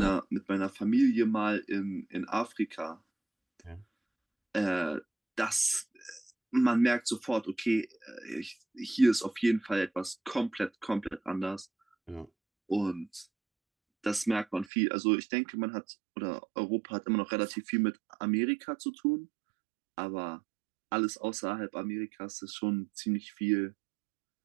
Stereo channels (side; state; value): left; drops out; at 14.7 s